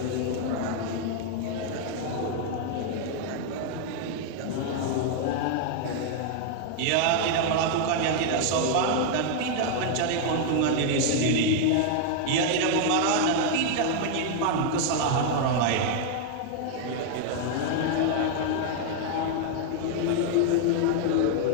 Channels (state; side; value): different; both; correlation 0.00